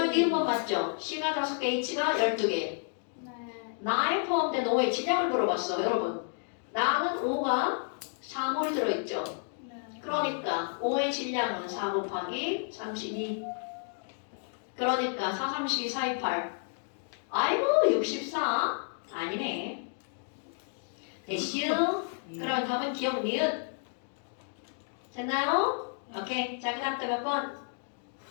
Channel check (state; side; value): silent; right; 57 dB below the other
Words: 니은번 맞죠? C가 5개, H가 12개. 네. 나에 포함된 5의 질량을 물어봤어, 여러분. 나는 5가 4몰이 들어있죠. 네. 그러니까 5의 질량은 4 곱하기 32. 그러니까 4, 32, 4, 2, 8. 아이고 64? 아니네. 됐슈? 그럼 답은 기억 니은. 됐나요? 오케이. 자, 그 다음 또 몇 번?